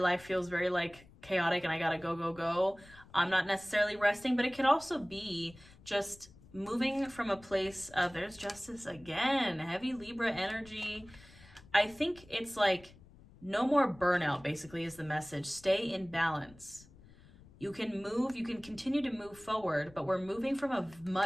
feels very like chaotic and I gotta go. I'm not necessarily resting, but it could also be just moving from a place of, there's Justice again, heavy Libra energy. I think it's like no more burnout, basically, is the message. Stay in balance. You can move, you can continue to move forward, but we're moving from a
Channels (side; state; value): left; noise; rumble, 23 dB below the sound